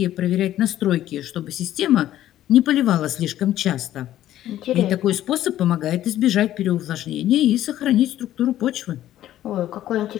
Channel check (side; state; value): right; quieter; 12.9 dB